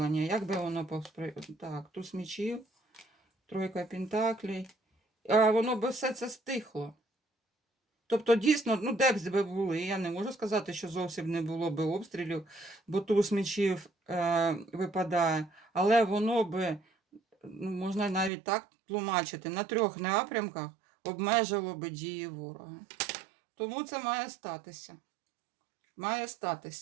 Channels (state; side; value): drops out; left; at 18.3 s